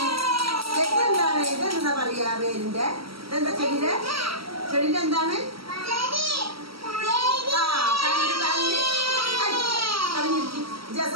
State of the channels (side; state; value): left; late; 0.75 ms